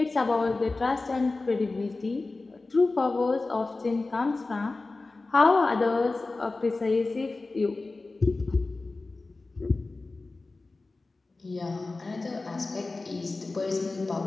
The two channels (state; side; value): quieter; right; 3.5 dB